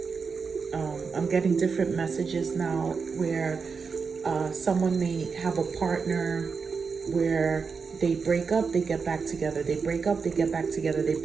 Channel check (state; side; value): quieter; left; 5.3 dB